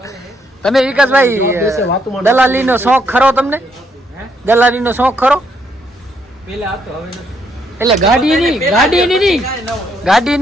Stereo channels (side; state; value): both; normal; correlation 0.74